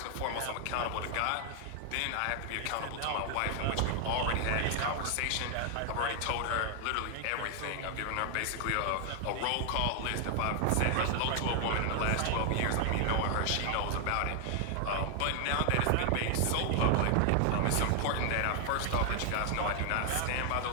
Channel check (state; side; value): different; both; correlation 0.00